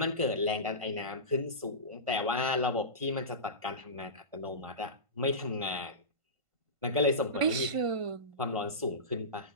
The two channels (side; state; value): left; late; 1.5 ms